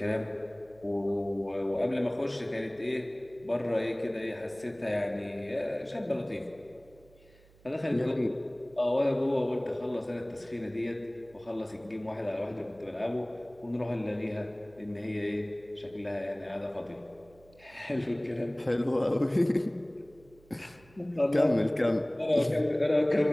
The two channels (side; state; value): right; noise; hum, 27 dB below the sound